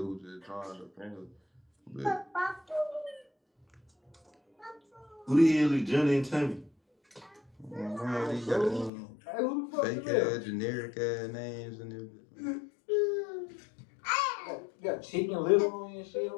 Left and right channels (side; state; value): right; drops out; at 8.9 s